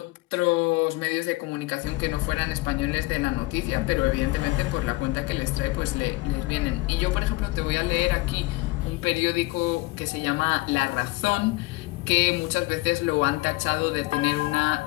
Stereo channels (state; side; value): quieter; right; 21.8 dB